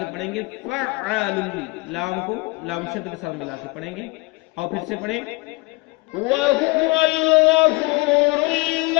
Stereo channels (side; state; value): right; quieter; 24.9 dB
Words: پڑھیں گے فعال، لام کو لام شد کے ساتھ ملا کے پڑھیں گے، اور پھر سے پڑھیں وَهُوَ الْغَفُورُ